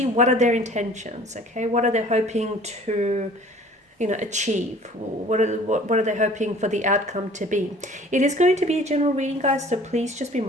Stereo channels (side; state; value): both; normal; correlation 0.50